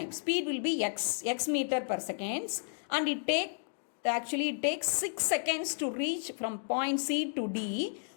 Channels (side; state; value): right; silent; digital silence